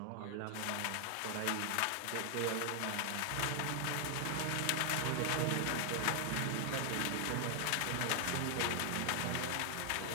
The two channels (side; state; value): both; different; correlation 0.00